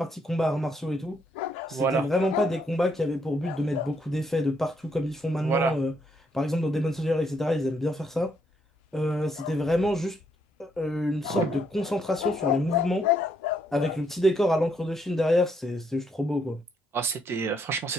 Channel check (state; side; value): normal; both; correlation 0.73